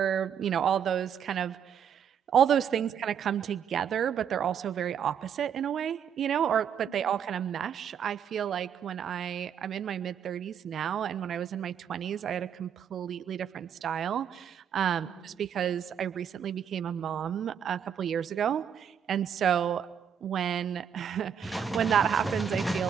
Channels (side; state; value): left; quieter; 8.2 dB